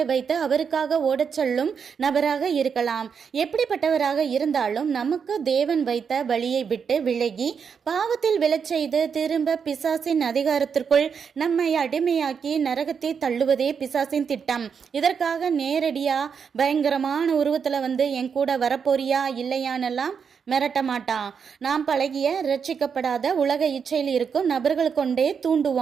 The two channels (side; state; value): left; quieter; 6.5 dB